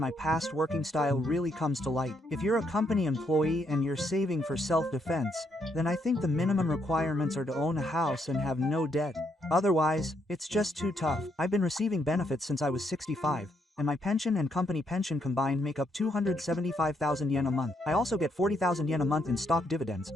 past working style really comes to light. If you're a company employee and you're saving for self-defense, then I think the minimum requirements are to own a house and have no debt. Otherwise, it's just too tough. I've been receiving benefits since I was 65, and my pension and company pension combined make up 275,000 yen a month. I also get 40,000 yen a month in stock dividends,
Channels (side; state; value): both; normal; correlation 0.75